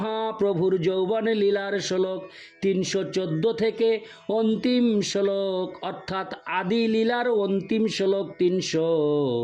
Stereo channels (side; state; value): both; identical; correlation 1.00